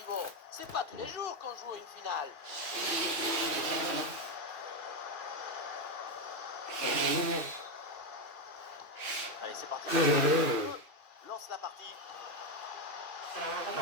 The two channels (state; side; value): late; left; 2.7 ms